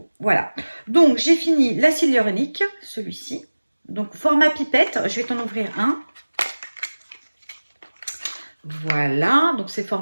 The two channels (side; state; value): both; inverted; correlation -1.00